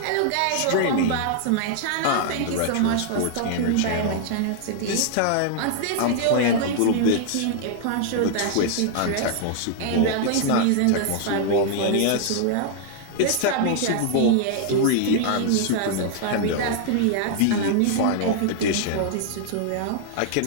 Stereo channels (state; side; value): different; both; correlation -0.01